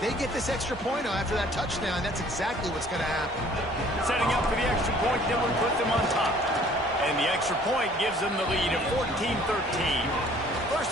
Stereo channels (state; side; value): normal; both; correlation 0.55